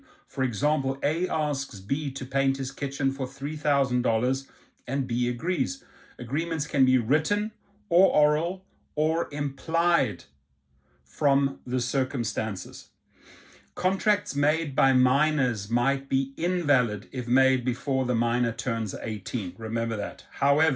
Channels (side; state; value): both; identical; correlation 1.00